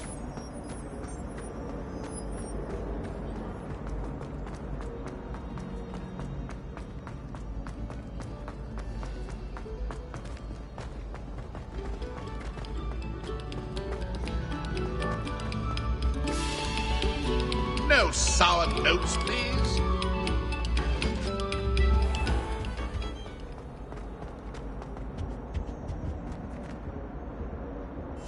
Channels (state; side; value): identical; both; correlation 1.00